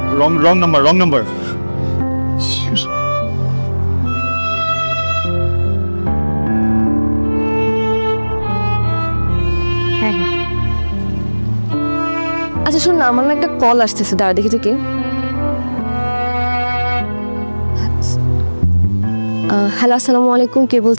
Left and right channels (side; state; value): both; inverted; correlation -1.00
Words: Wrong number. আচ্ছা শোন না, আমার না একটা কল আসতেছে, দাঁড়া দেখি তো কে। হ্যালো, আসসালামু আলাইকুম, কে